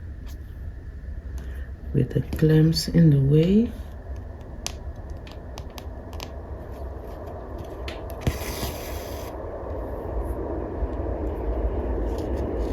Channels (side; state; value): both; identical; correlation 1.00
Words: with the clamps in the way.